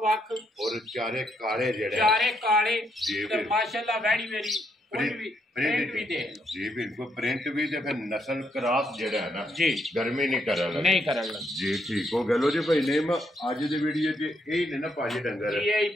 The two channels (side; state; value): both; normal; correlation 0.76